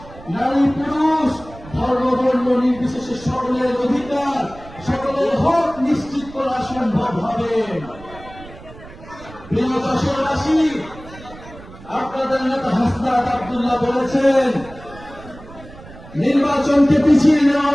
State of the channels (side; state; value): right; noise; rumble, 18 dB below the sound